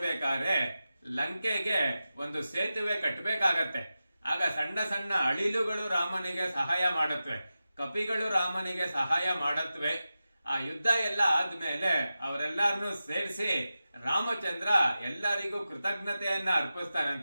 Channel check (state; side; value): inverted; both; correlation -0.93